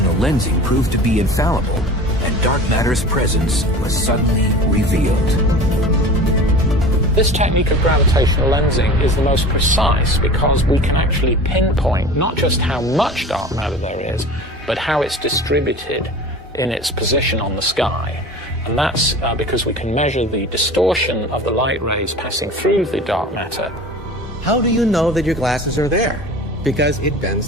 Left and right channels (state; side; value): normal; both; correlation 0.37